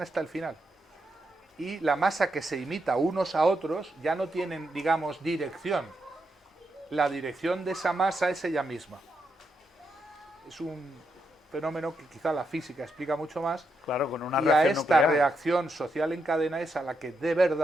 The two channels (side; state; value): both; normal; correlation 0.82